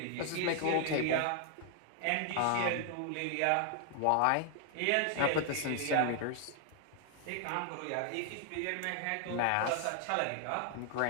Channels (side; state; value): both; different; correlation 0.00